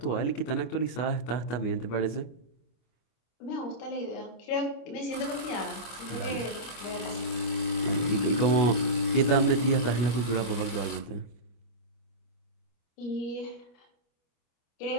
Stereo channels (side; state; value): right; late; 25 ms